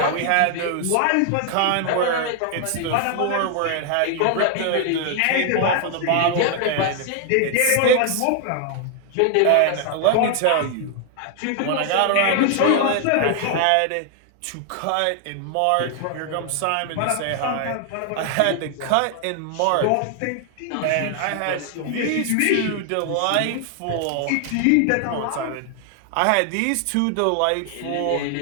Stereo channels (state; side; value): different; both; correlation 0.00